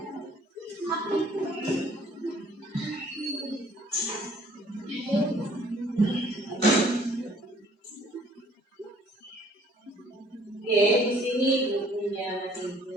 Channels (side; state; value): both; normal; correlation 0.58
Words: Oke, di sini bukunya masih